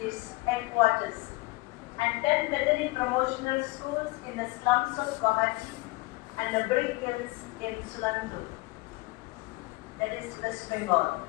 its headquarters, and 10 Bethany promotional schools in the slums of Guwahati and the brick kilns in Sulando, that is West Bengal.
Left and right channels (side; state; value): right; quieter; 22.6 dB